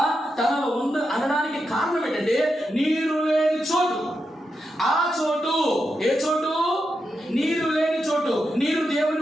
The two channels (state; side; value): normal; both; correlation 0.86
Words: తనలో అనడానికి కారణం ఏంటంటే నీరు లేని చోటు. ఆ చోటు ఏ చోటు? నీరు లేని చోటు. నీరు